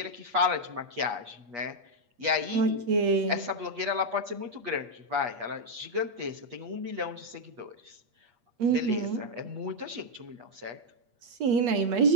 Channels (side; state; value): left; late; 8.4 ms